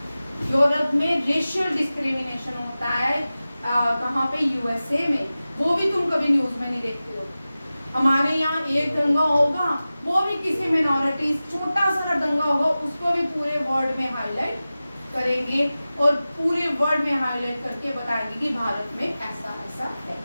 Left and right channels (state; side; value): inverted; both; correlation -0.96